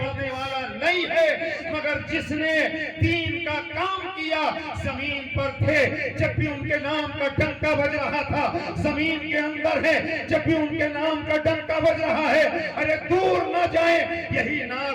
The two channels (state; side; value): identical; both; correlation 1.00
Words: والا نہیں ہے، مگر جس نے دین کا کام کیا زمین پر تھے جب بھی ان کے نام کا ڈنکا بج رہا تھا، زمین کے اندر ہے جب بھی ان کے نام کا ڈنکا بج رہا ہے۔ ارے دور نہ جائیں، یہی